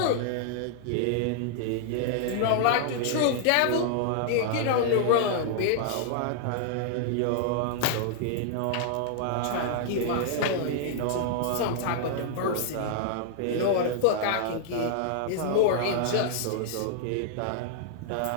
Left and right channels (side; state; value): both; different; correlation -0.01